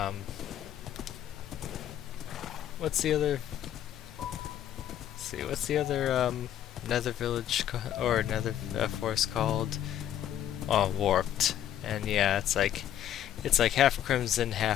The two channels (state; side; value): quieter; right; 11.0 dB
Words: what's the other? Let's see, what's the other Nether village or Nether forest called? Oh, Warped. And yeah, it's like half Crimson,